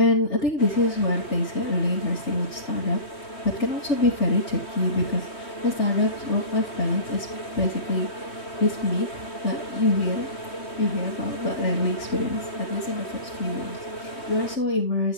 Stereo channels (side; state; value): right; late; 3.1 ms